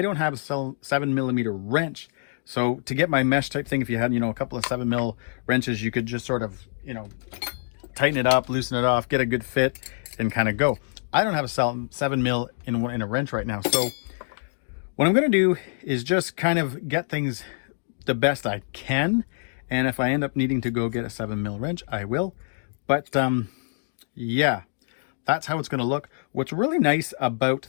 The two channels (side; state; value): right; silent; digital silence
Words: have a 7mm wrench. So to get my mesh type thing, if you had, you know, a couple of 7mm wrenches, you could just sort of, you know, tighten it up, loosen it off, get a good fit and kind of go. I don't have a 7mm in a wrench right now. So what I'm going to do is just kind of get things the best I can, and if I end up needing to go get a 7mm wrench, I will. But yeah, that's how it's going to look. What's really nice about